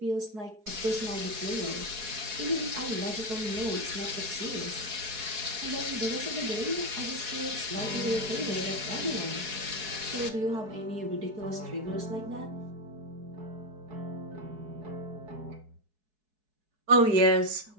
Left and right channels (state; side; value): late; left; 4.7 ms